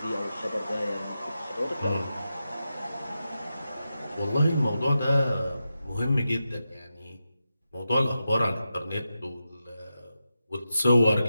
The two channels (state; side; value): inverted; both; correlation -0.90